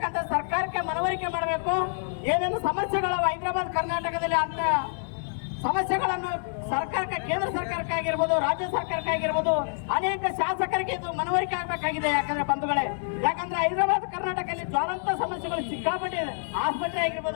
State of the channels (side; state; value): right; silent; digital silence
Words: ಸರ್ಕಾರಕ್ಕೆ ಮನವರಿಕೆ ಮಾಡಬೇಕು. ಏನೇನು ಸಮಸ್ಯೆಗಳು ಹೈದರಾಬಾದ್ ಕರ್ನಾಟಕದಲ್ಲಿ ಅಂತ ಸಮಸ್ಯೆಗಳನ್ನು ಸರ್ಕಾರಕ್ಕೆ, ಕೇಂದ್ರ ಸರ್ಕಾರಕ್ಕಾಗಿರ್ಬೋದು, ರಾಜ್ಯ ಸರ್ಕಾರಕ್ಕಾಗಿರ್ಬೋದು, ಅನೇಕ ಶಾಸಕರಿಗೆ ಇದು ಮನವರಿಕೆ ಆಗಬೇಕಾಗಿದೆ. ಯಾಕಂದ್ರೆ ಬಂಧುಗಳೇ, ಯಾಕಂದ್ರೆ ಹೈದರಾಬಾದ್ ಕರ್ನಾಟಕದಲ್ಲಿ ಜ್ವಾಲಂತ ಸಮಸ್ಯೆಗಳು ಸಿಕ್ಕಾಪಟ್ಟೆ, ಆಸ್ಪತ್ರೆ